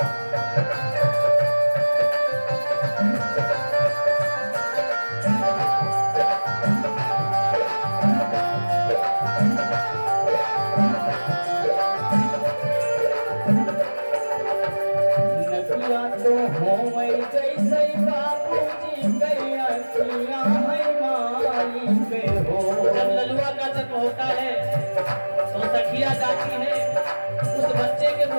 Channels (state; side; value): inverted; both; correlation -1.00